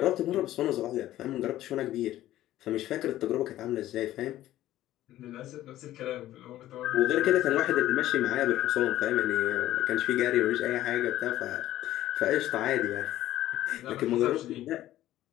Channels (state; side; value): quieter; right; 14.1 dB